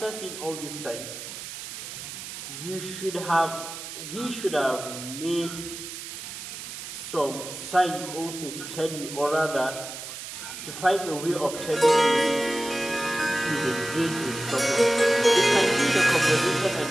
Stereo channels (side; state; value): right; noise; hiss, 9 dB below the sound